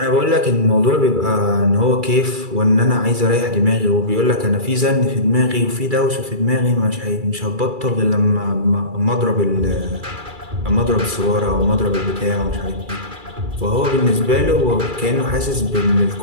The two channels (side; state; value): left; late; 2.3 ms